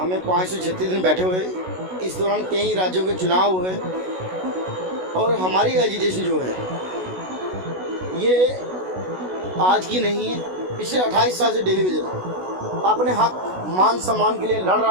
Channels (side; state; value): left; late; 16 ms